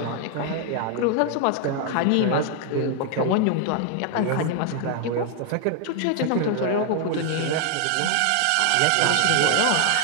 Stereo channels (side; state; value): both; different; correlation 0.00